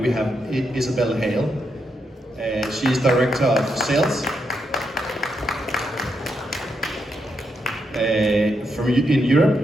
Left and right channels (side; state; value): both; normal; correlation 0.81